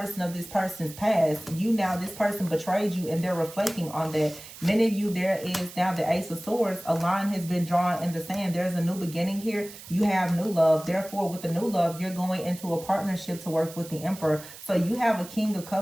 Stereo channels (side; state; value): right; noise; hiss, 16 dB below the sound